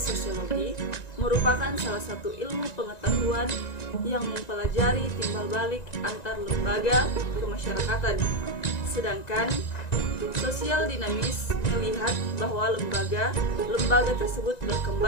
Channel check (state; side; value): late; right; 1.9 ms